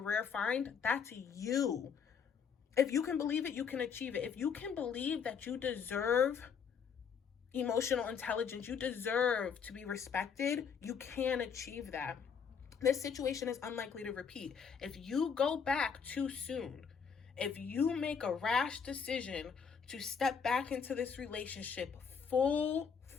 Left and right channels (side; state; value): right; quieter; 6.6 dB